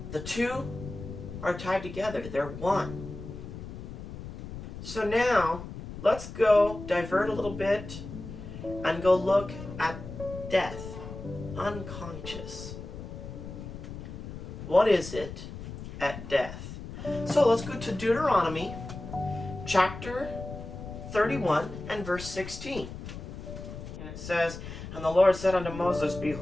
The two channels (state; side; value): noise; left; rumble, 10 dB below the sound